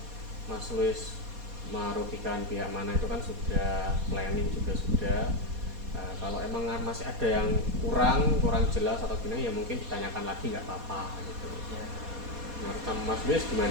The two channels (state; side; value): late; left; 4.2 ms